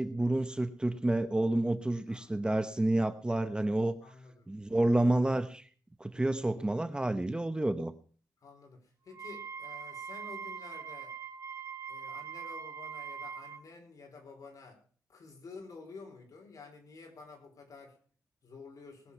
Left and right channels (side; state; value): both; normal; correlation 0.96